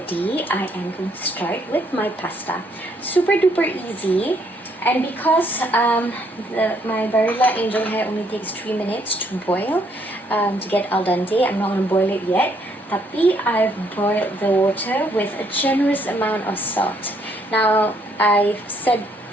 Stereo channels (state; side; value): normal; both; correlation 0.69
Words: I am going to start with my pasta. Super duper easy, and because my Barilla Angel Hair only takes 3 minutes to boil to get al dente, I'm not going to boil it yet. Tapi I've boiled the water with a generous amount of salt. Now, I've said